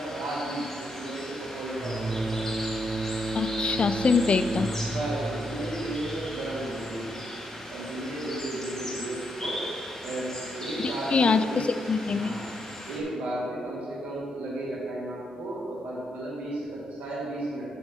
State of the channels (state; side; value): normal; both; correlation 0.79